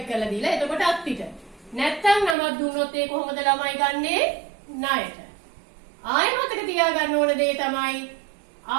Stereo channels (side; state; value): left; drops out; at 2.4 s